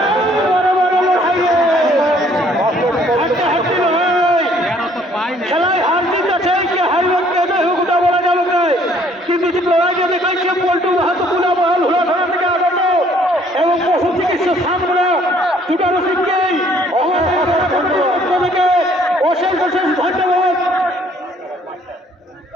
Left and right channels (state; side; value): normal; both; correlation 0.61